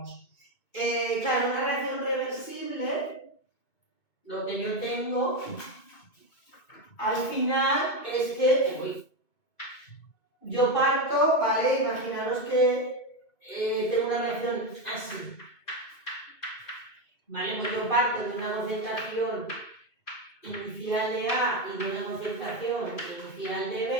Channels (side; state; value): right; late; 2.4 ms